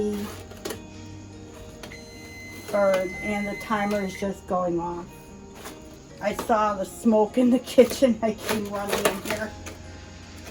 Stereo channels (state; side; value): identical; both; correlation 1.00